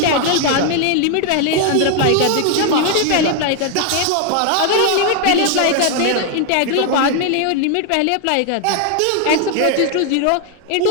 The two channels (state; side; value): different; both; correlation 0.01